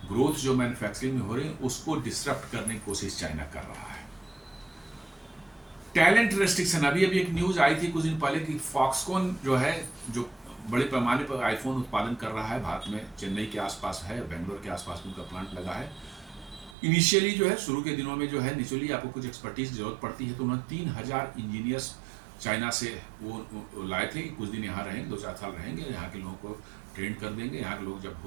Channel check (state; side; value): drops out; left; at 16.8 s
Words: ग्रोथ जो मैन्युफैक्चरिंग में हो रही है उसको डिसरप्ट करने की कोशिश चाइना कर रहा है। टैलेंट रेस्ट्रिक्शन, अभी एक न्यूज आई थी कुछ दिन पहले कि फॉक्सकॉन जो है, जो बड़े पैमाने पर आईफोन उत्पादन कर रहा है भारत में, चेन्नई के आसपास है, बेंगलोर के आसपास उनका प्लांट लगा है। इनिशियली जो है शुरू के दिनों में जो है नेचुरली आपको कुछ एक्सपर्टीज जरूरत पड़ती है, तो उन्होंने 3000 इंजीनियर्स चाइना से वो लाए थे कि कुछ दिन यहाँ रहेंगे, 2-4 साल रहेंगे, यहाँ के लोगों को ट्रेन कर देंगे, यहाँ के लोग जब